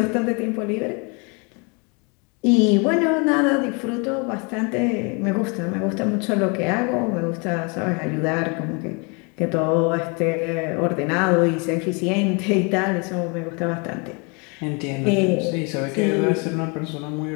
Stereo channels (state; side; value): quieter; right; 32.5 dB